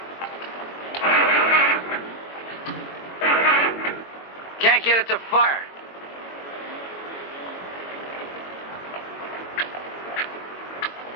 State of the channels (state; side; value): late; right; 22 ms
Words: Can't get it to fire.